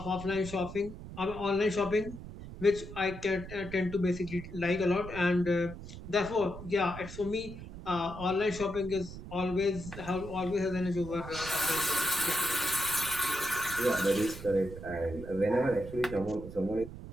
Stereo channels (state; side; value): noise; right; rumble, 12 dB below the sound